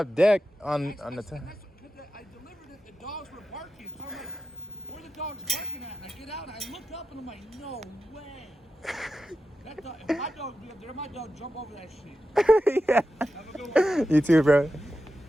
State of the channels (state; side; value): normal; both; correlation 0.90